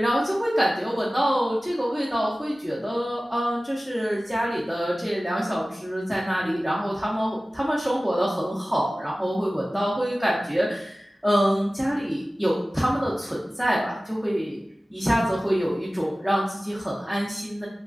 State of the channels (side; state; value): both; normal; correlation 0.97